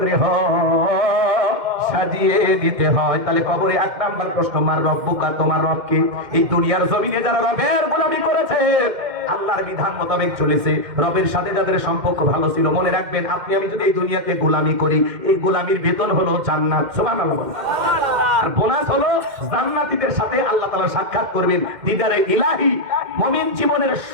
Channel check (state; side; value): late; left; 2.1 ms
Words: গৃহ সাজিয়ে দিতে হয়। তাহলে কবরে 1 নাম্বার প্রশ্ন, মার রব্বুকা, তোমার রব কি? এই দুনিয়ার জমিনে যারা রবের গোলামি করেছে, আল্লাহর বিধান মোতাবেক চলেছে, রবের সাথে যাদের সম্পর্ক ভালো ছিল, মনে রাখবেন, আপনি আমি যদি এই দুনিয়াতে গোলামি করি, এই গোলামির বেতন হলো জান্নাত। সুবহানাল্লাহ। আর বোনাস হলো জান্নাতীদের সাথে আল্লাহ তাআলা সাক্ষাৎ করবেন, দিদারে ইলাহি। মুমিন জীবনের